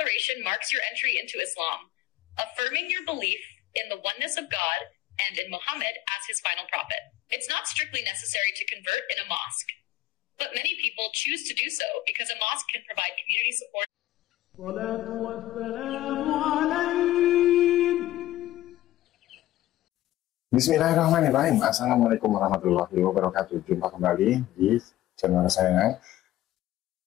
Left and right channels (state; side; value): quieter; right; 14.8 dB